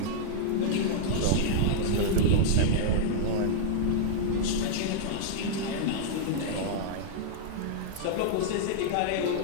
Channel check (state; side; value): different; both; correlation -0.01